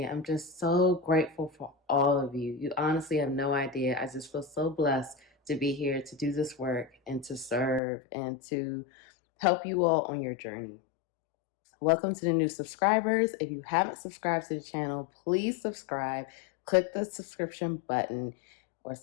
I'm just so grateful for all of you. You honestly have no idea. I just feel so blessed to be here to do this work and to serve and to help you all on your journey. Welcome to the new subscribers. If you haven't subscribed to the channel, please subscribe. Click the subscription button or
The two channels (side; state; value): right; drops out; at 7.8 s